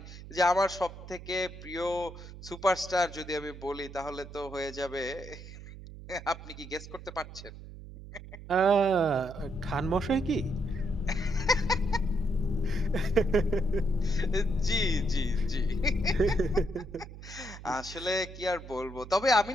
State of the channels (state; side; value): noise; right; hum, 14 dB below the sound